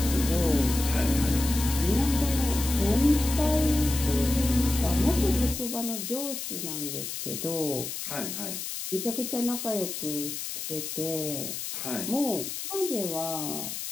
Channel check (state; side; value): noise; left; hiss, 6 dB below the sound